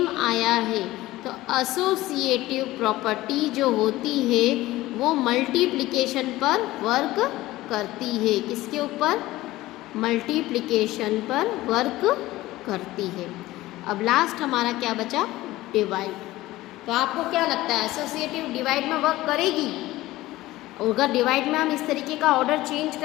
आया है। तो एसोसिएटिव प्रॉपर्टी जो होती है वो मल्टीप्लिकेशन पर वर्क करती है। किसके ऊपर? मल्टीप्लिकेशन पर वर्क करती है। अब लास्ट हमारा क्या बचा? डिवाइड। तो आपको क्या लगता है एसोसिएटिव डिवाइड में वर्क करेगी? और अगर डिवाइड में हम इस तरीके का ऑर्डर चेंज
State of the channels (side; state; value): right; quieter; 17.3 dB